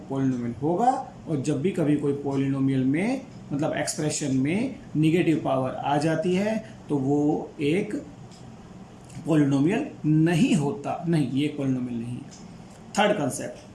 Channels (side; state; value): both; identical; correlation 1.00